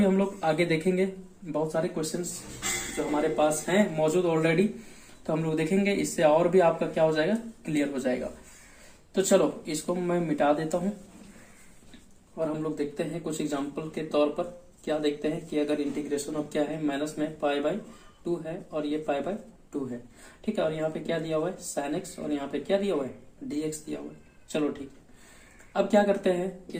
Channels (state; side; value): identical; both; correlation 1.00